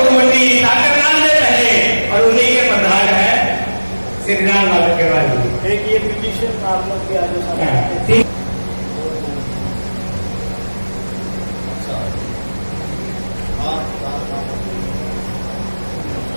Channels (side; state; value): both; inverted; correlation -1.00